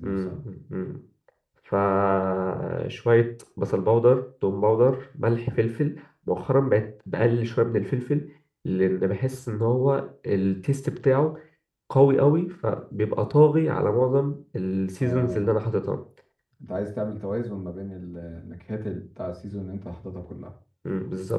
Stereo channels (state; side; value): identical; both; correlation 1.00